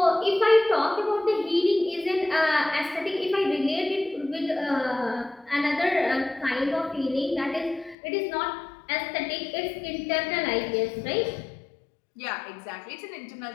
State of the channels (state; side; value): drops out; right; at 8.0 s